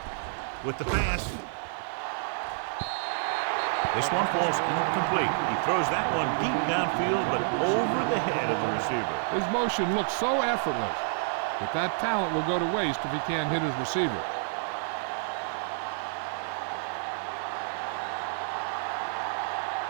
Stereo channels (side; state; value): left; silent; digital silence